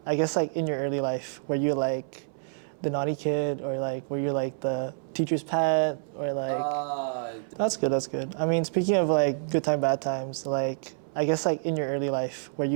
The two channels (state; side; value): silent; left; 59 dB below the other